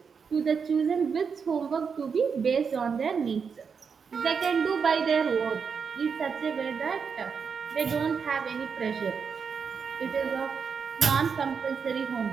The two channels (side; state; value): left; quieter; 6.0 dB